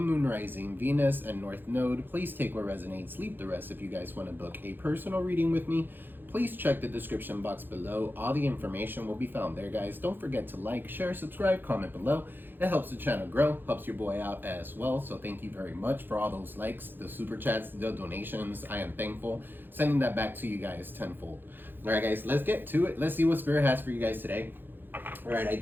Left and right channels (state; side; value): late; left; 0.096 ms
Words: Moon, Rising, Venus, and North Node. Please take what resonates, leave the rest. If you guys want to book a personal reading with me, please check the description box below. All the information will be found there, guys. Don't forget to like, share, subscribe, comment below. It helps the channel grow, helps your boy out as well. So thank you very much for all those likes, the super chats, the donations. I am thankful. Sending that back to you guys tenfold. All right, guys, let's get to it. Let's see what Spirit has for you guys today. All right, I